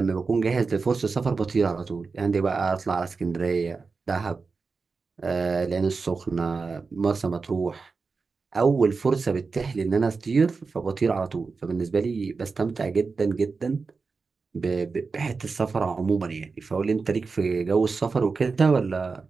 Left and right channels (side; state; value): left; quieter; 4.5 dB